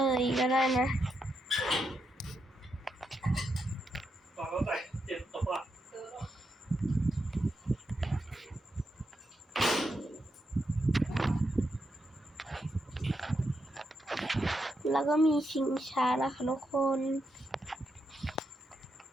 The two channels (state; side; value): normal; both; correlation 0.83